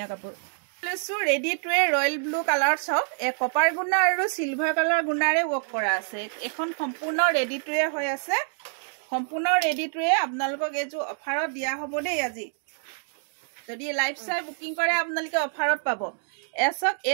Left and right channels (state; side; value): silent; left; digital silence